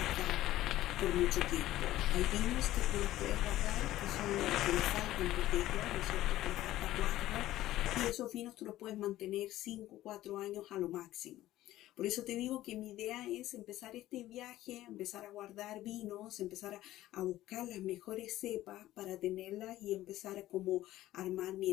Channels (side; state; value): right; quieter; 14.9 dB